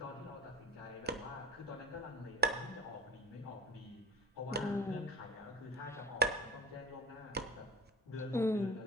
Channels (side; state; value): both; normal; correlation 0.36